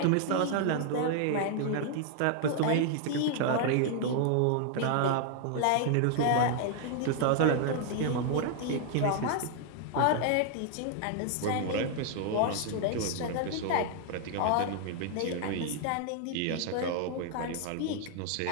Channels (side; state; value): both; different; correlation 0.00